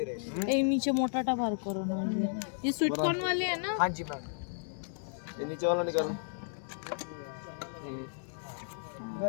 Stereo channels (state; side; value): silent; right; digital silence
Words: এই নিচে মোটাটা বার করো না, ये स्वीट कॉर्न वाले है ना? हाँ जी मैम, ये नीचे वाला निकालो।